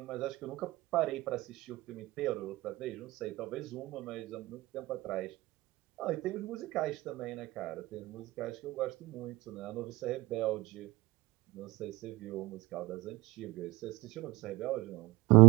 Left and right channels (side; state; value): left; quieter; 19.9 dB